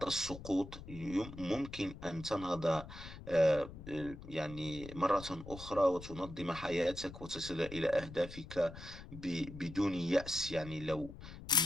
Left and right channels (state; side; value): noise; left; rumble, 13 dB below the sound